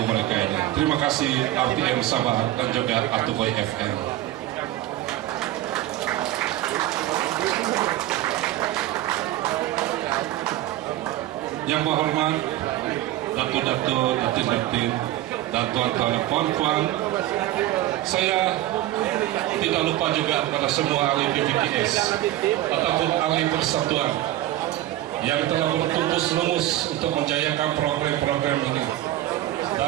mereka ini. Terima kasih RTM Sabah dan juga Atukoy FM. Yang berhormat Datuk-datuk, datin-datin, dan tuan-tuan dan puan-puan, saya tidak lupa juga pada semua ahli PVKS ataupun ahli persatuan yang telah bertumpus lumus untuk menjayakan program-program ini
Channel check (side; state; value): left; quieter; 14.8 dB